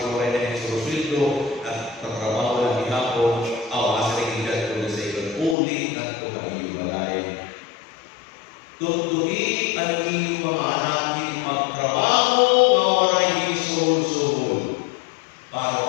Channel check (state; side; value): drops out; right; at 5.6 s